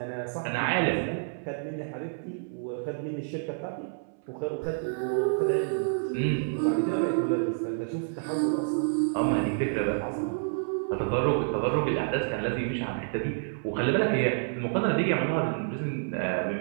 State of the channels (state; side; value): silent; left; 59 dB below the other